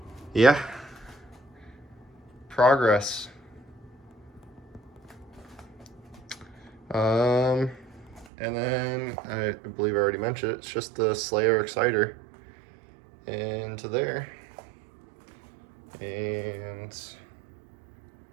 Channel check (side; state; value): left; drops out; at 8.2 s